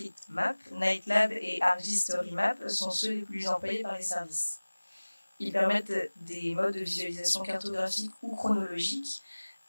Nightlab et ArcGIS-StoryMap sont ceux les plus employés par les services. Ils permettent des modes de visualisation cartographique ou chronologique,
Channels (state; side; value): inverted; both; correlation -1.00